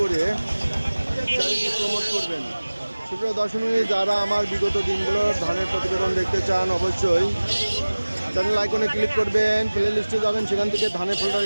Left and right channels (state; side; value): inverted; both; correlation -1.00